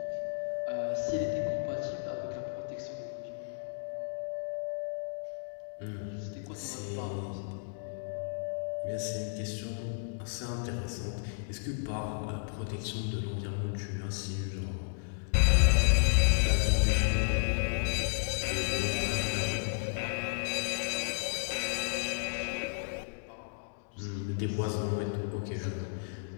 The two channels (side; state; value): right; silent; digital silence